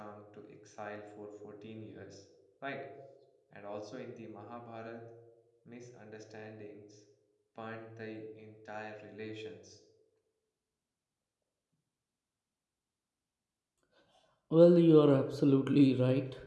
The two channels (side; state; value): both; identical; correlation 1.00